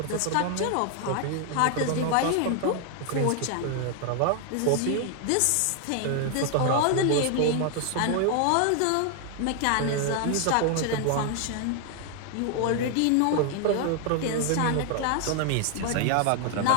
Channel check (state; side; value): different; both; correlation 0.00